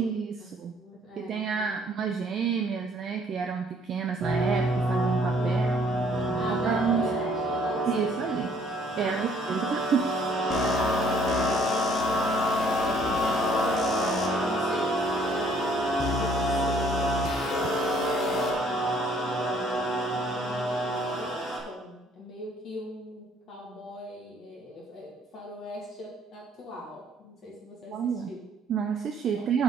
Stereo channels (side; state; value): both; normal; correlation 0.61